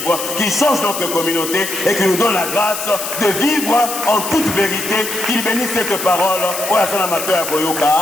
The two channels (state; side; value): noise; left; hiss, 6 dB below the sound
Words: qu'il change notre communauté et qu'il nous donne la grâce de vivre en toute vérité, qu'il bénisse cette parole.